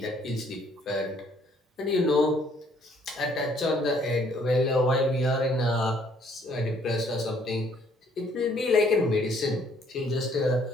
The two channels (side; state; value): both; normal; correlation 0.63